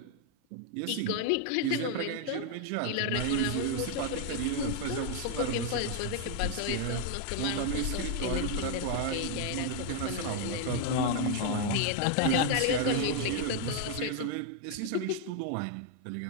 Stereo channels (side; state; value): both; different; correlation 0.00